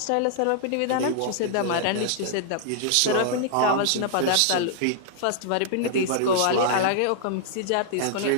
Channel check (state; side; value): different; both; correlation -0.01